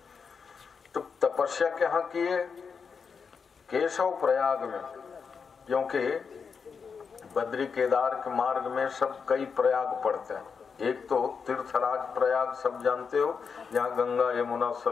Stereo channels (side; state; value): right; quieter; 5.8 dB